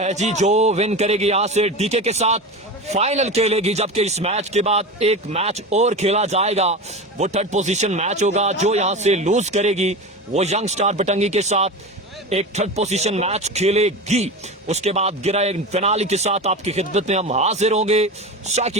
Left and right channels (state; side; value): normal; both; correlation 0.26